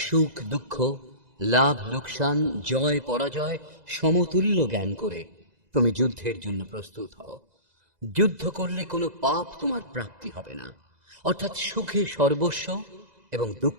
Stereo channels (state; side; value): late; left; 2.0 ms